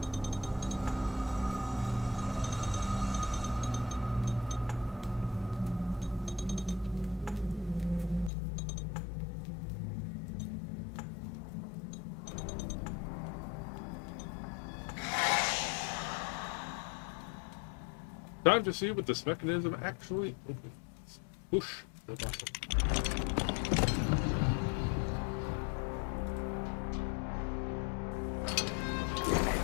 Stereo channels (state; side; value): drops out; right; at 8.3 s